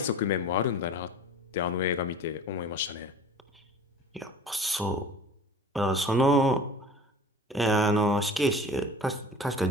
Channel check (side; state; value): both; normal; correlation 0.41